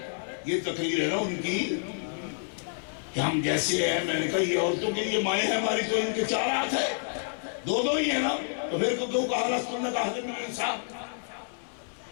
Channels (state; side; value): silent; right; digital silence